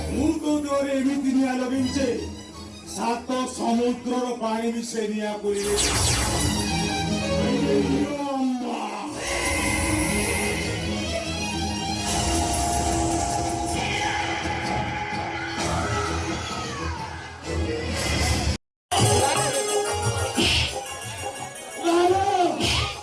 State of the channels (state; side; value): identical; both; correlation 1.00